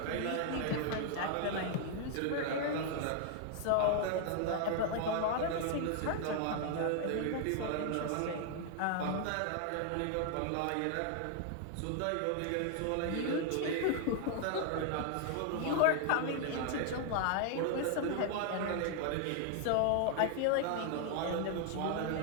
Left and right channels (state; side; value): different; both; correlation 0.00